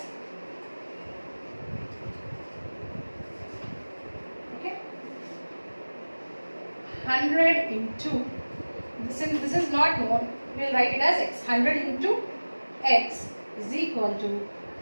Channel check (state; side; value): inverted; both; correlation -1.00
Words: okay, 100 into, this is not known, we will write it as x. 100 into x is equal to